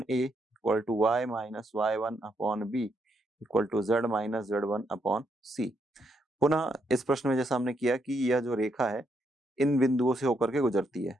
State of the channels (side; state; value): both; normal; correlation 0.77